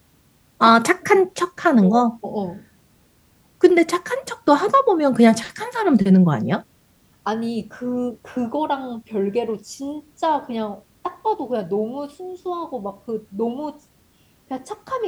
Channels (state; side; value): identical; both; correlation 1.00